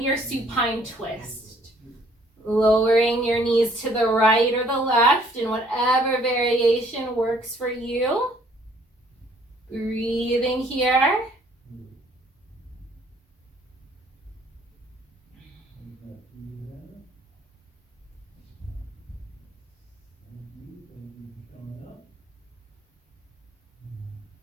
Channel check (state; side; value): normal; both; correlation 0.61